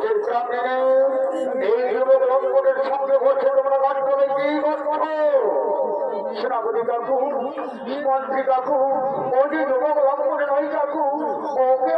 চিন্তা নেই, এই যুবক লঙ্ঘনের সঙ্গে বসে তোমরা গাছ করে কি করছো? সেনাপতি কাকু, মন্ত্রী কাকু, ও যে যুবক লঙ্ঘনে নয় কাকু, ওকে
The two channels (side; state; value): both; identical; correlation 1.00